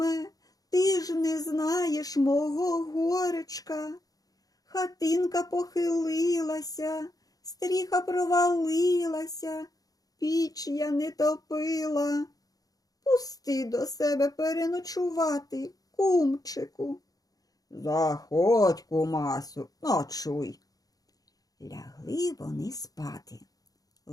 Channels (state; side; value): late; right; 0.18 ms